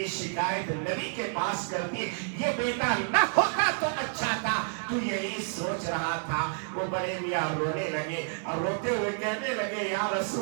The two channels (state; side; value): silent; left; 58 dB below the other